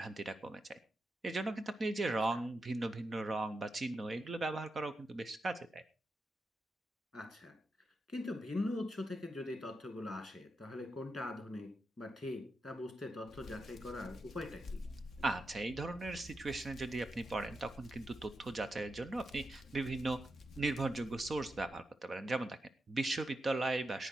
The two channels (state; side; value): normal; both; correlation 0.87